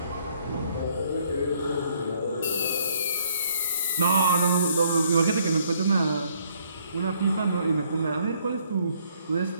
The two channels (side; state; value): both; inverted; correlation -0.66